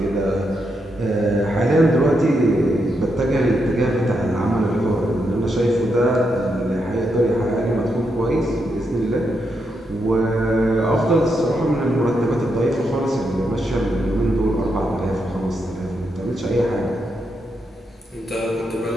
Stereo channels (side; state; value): both; normal; correlation 0.82